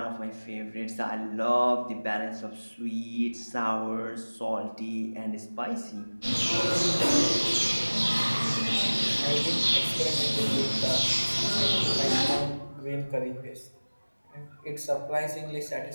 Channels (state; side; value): inverted; both; correlation -1.00